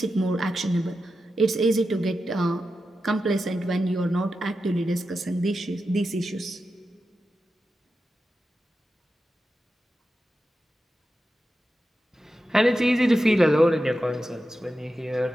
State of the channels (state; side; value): normal; both; correlation 0.90